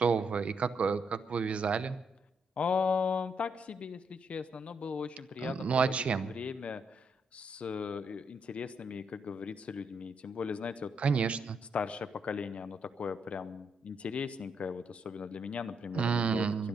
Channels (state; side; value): normal; both; correlation 0.77